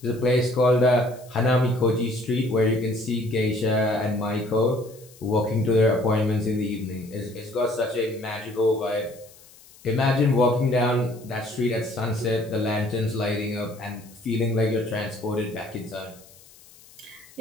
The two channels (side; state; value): left; noise; hiss, 24 dB below the sound